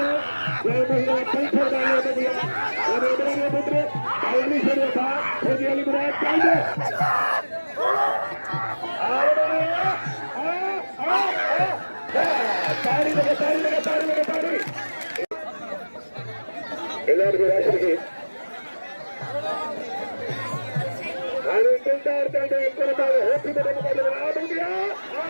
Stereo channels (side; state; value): both; inverted; correlation -1.00